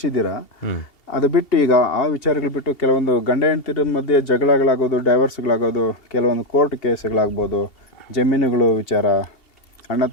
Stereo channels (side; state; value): right; late; 2.7 ms